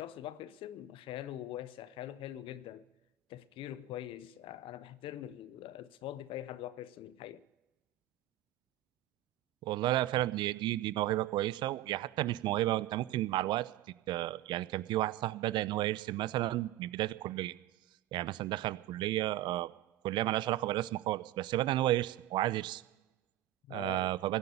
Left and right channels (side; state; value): left; quieter; 11.4 dB